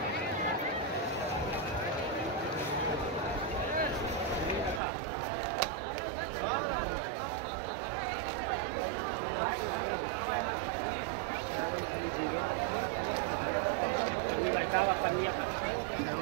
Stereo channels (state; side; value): drops out; left; at 4.8 s